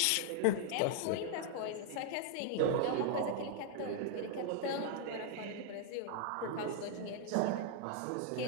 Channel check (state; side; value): different; both; correlation 0.00